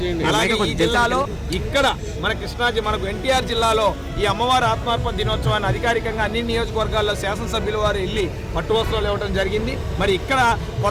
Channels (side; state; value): both; identical; correlation 1.00